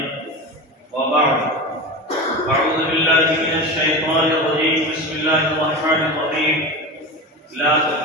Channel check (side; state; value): both; normal; correlation 0.26